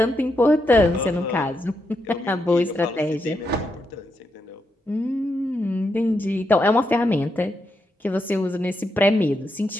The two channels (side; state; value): both; normal; correlation 0.82